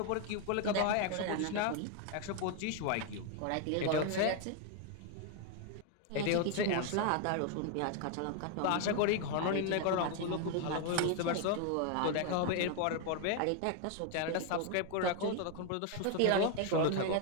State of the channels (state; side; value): different; both; correlation 0.01